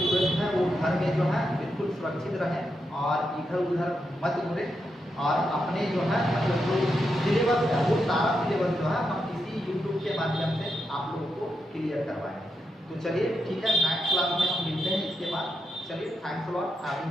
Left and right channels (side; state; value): both; normal; correlation 0.84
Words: है वो घर में जो है बिल्कुल सुरक्षित रहें और इधर उधर मत घूमें और अपने जो है मतलब जो सिलेबस है वो सारा सिलेबस जो है हम इसी यूट्यूब के माध्यम से आप लोगों को क्लियर करवाएं। तो चलिए ठीक है, नेक्स्ट क्लास में हम मिलते हैं इसके बाद। चलिए thanks a lot